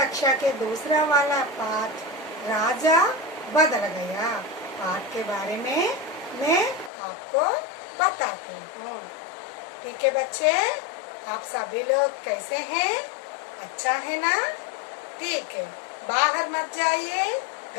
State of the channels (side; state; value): right; drops out; at 6.9 s